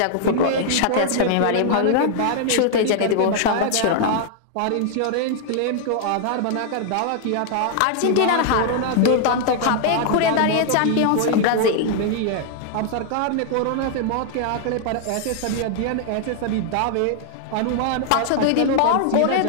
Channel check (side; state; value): both; different; correlation 0.00